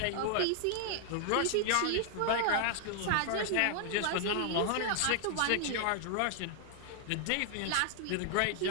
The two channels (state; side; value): different; both; correlation -0.01